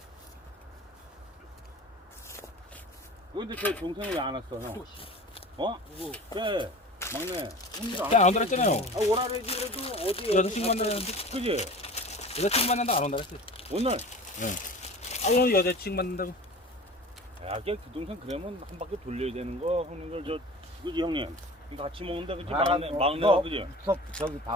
근데 저 동생이 왜 안 왔어 형? 어? 누구? 그래 막내. 안 들었잖아요. 아, 오라래지 그래도 어디 여자친구 만나는데 그지? 여자친구 만난다 안 온다 그랬어. 오늘. 아 오늘 여자친구 만난다고. 야, 걔 그 동생 그러면 한 바퀴 돌려야 되는 거 형님들 저 그지 형님? 이거 같이 먹는데 그지 막내가 그지? 저기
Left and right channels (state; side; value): normal; both; correlation 0.38